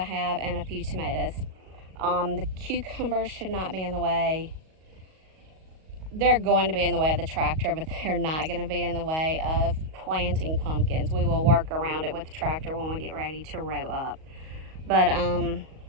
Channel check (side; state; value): left; late; 38 ms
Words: and a few tomatoes. The cucumbers should not be in the way. They're going to be in the way of the tractor, but they're not going to be in the way of planting pumpkins. We will work around it with the tractor when we get ready to row up. But